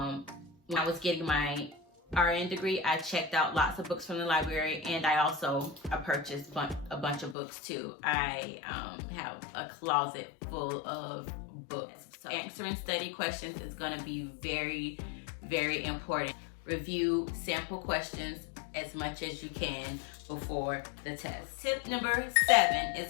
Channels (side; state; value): right; drops out; at 7.4 s